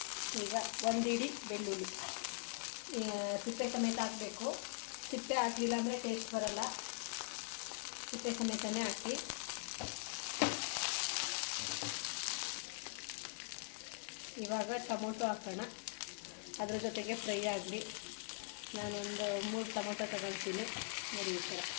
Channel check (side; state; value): right; silent; digital silence